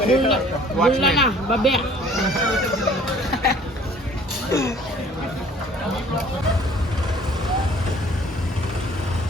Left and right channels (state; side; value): normal; both; correlation 0.53